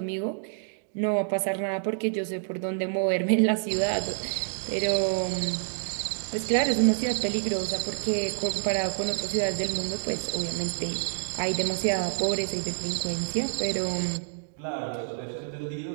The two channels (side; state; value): left; silent; digital silence